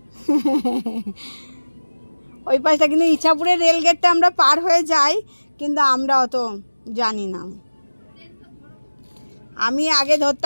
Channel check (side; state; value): both; inverted; correlation -1.00